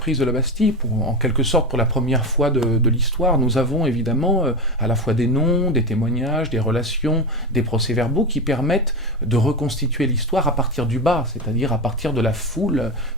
de la Bastille, en quelque sorte pour la première fois de l'histoire, nous avons évidemment à la fois des noms, des témoignages, des relations, des procès-verbaux qui permettent de reconstituer l'histoire à partir du bas, c'est-à-dire à partir de la foule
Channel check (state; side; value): normal; both; correlation 0.19